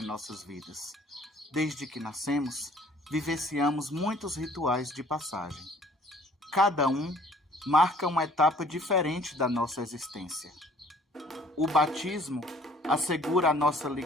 nossas vidas. Desde que nascemos, vivenciamos muitos rituais de passagem. Cada um marca uma etapa diferente da nossa existência. O batismo assegura a nossa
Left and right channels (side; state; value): both; normal; correlation 0.56